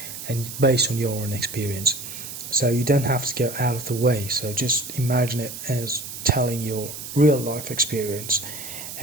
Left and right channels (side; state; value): right; noise; hiss, 10 dB below the sound